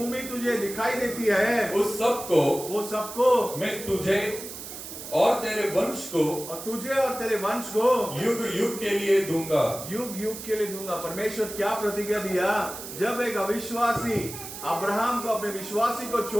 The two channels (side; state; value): right; noise; hiss, 10 dB below the sound